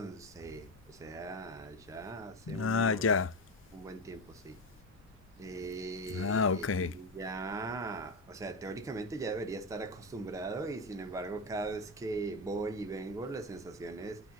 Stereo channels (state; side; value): noise; left; rumble, 25 dB below the sound